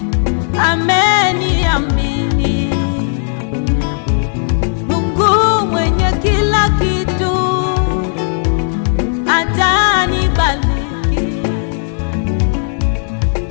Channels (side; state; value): right; silent; digital silence